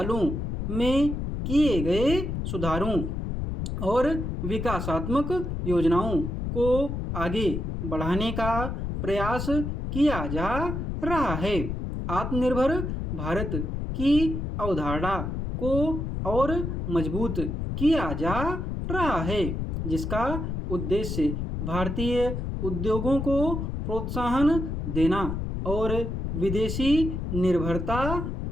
में किए गए सुधारों और विकासात्मक योजनाओं को आगे बढ़ाने का प्रयास किया जा रहा है। आत्मनिर्भर भारत की अवधारणा को और मजबूत किया जा रहा है, जिसका उद्देश्य भारतीय उद्योगों को प्रोत्साहन देना और विदेशी निर्भरता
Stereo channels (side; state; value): left; noise; rumble, 3 dB below the sound